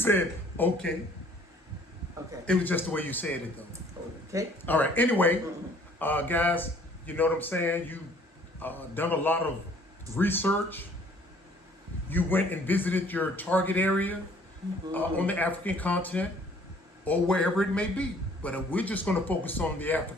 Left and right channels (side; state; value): both; normal; correlation 0.57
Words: okay. Okay. It was just the way you said it, though. Okay. All right. Anyway, guys, you know what I'm saying? You done a lot of research. You went and visited your target area on the African continent or wherever it may be. But we're just going to focus on the